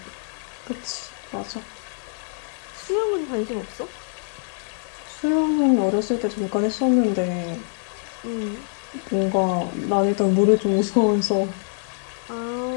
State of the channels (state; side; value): silent; right; 62 dB below the other